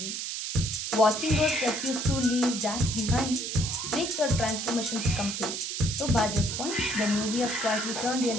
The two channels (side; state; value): right; noise; hiss, 4 dB below the sound